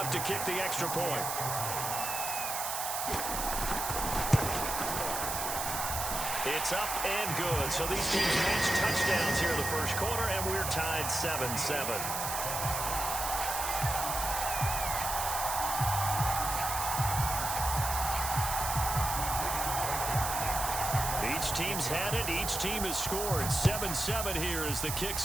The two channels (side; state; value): right; noise; hiss, 3 dB below the sound